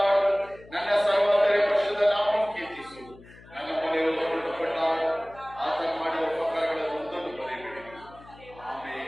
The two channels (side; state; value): left; noise; hum, 22 dB below the sound